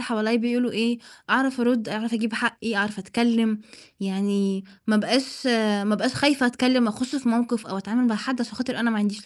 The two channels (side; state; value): both; identical; correlation 1.00